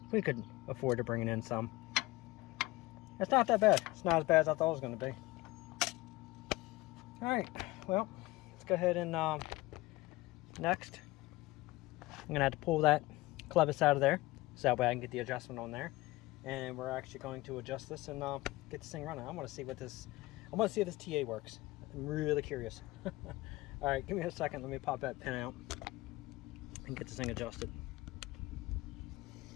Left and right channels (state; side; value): quieter; right; 20.0 dB